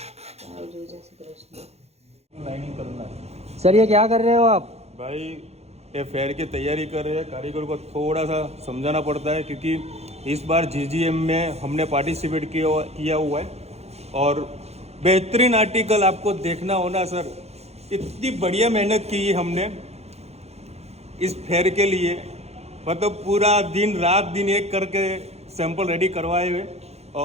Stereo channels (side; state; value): left; late; 0.31 ms